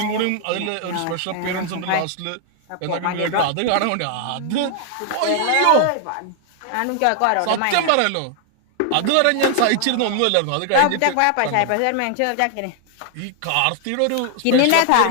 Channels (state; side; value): different; both; correlation 0.00